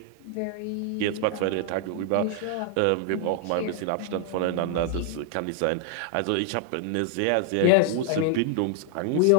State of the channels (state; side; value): different; both; correlation 0.00